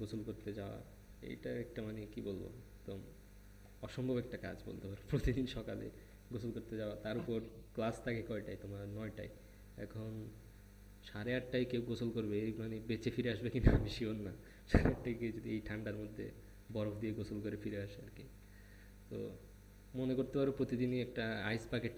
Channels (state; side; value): identical; both; correlation 1.00